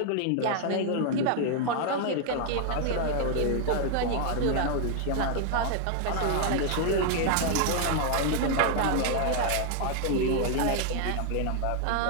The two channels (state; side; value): different; both; correlation 0.00